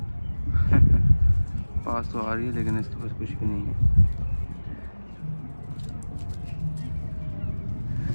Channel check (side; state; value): both; inverted; correlation -1.00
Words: पास तो आ रही है लेकिन इसके पास कुछ भी नहीं है,